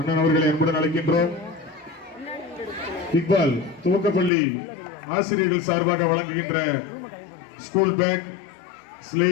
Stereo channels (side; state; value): right; drops out; at 4.3 s